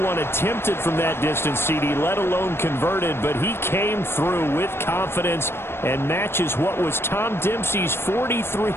attempted from that distance, CD, let alone converted, but he came through with confidence and matches what was Tom Dempsey's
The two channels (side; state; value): right; late; 0.12 ms